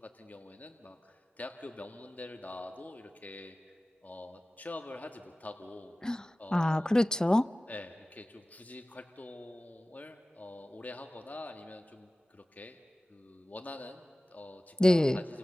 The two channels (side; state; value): both; normal; correlation 0.97